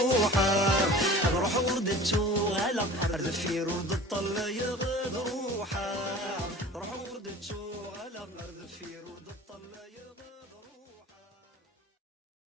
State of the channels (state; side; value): normal; both; correlation 0.41